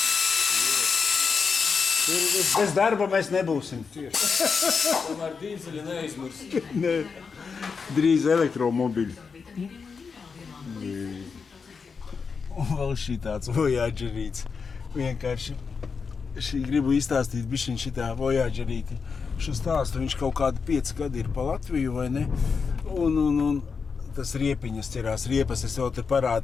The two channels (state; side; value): quieter; right; 5.4 dB